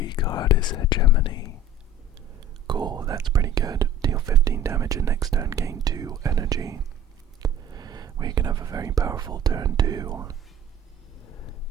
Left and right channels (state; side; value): normal; both; correlation 0.44